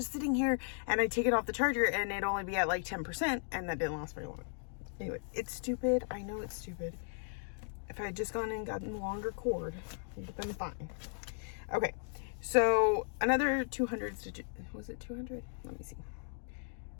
sitting here. And I take it off the charger, and it'd only be at like 10%, and that didn't last very long. Anyway, it's stupid. I know it's stupid. If I had just gone and gotten the longer cord, it would have been fine. Okay, so another 200 stitches. Was it 200? Let me see.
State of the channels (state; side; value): silent; right; 54 dB below the other